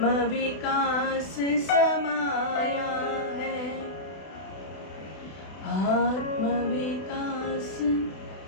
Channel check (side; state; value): right; late; 32 ms